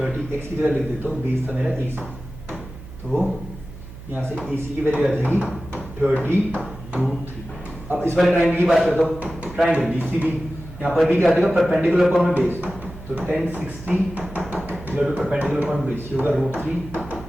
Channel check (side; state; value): right; noise; hum, 15 dB below the sound